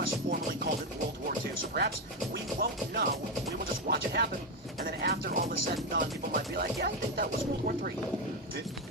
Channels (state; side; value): normal; both; correlation 0.09